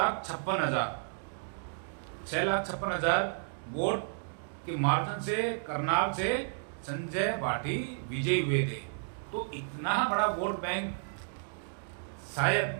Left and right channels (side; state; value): left; silent; digital silence